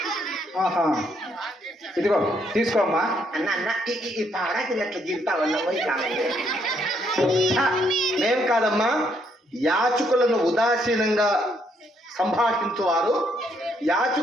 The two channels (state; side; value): normal; both; correlation 0.72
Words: ఇదిగో తీసుకోమ్మా. అన్న ఈ పారాకి అట్లా గీరుతావన్నా పోయి మేం కాదమ్మా. యాచకులను ఉదాసీనంగా సంభాషించువారు